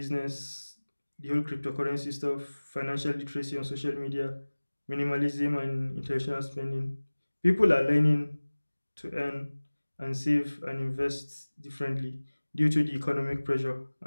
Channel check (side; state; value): both; inverted; correlation -1.00